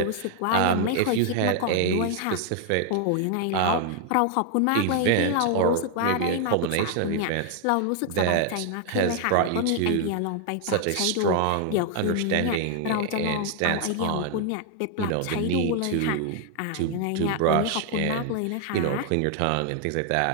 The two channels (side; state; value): both; different; correlation 0.00